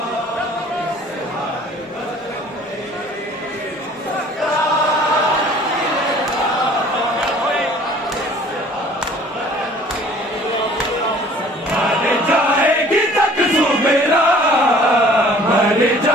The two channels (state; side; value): normal; both; correlation 0.52